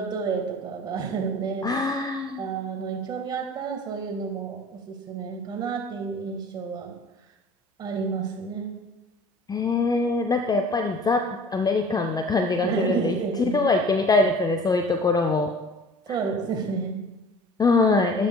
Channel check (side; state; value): both; normal; correlation 0.46